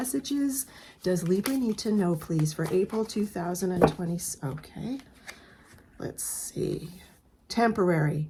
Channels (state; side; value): identical; both; correlation 1.00